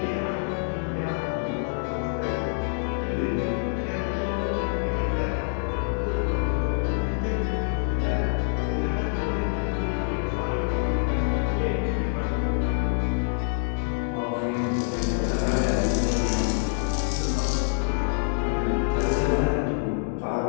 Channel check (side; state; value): right; silent; digital silence